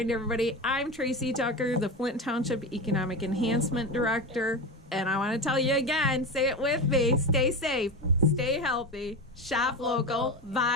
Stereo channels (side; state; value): both; normal; correlation 0.22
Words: everybody, I'm Tracey Tucker, the Flint Township Economic Enhancement Director. And I want to tell you again, say it with me, stay safe, stay healthy, shop local,